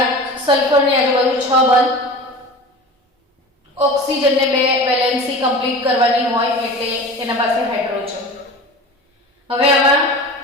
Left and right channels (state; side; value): normal; both; correlation 0.35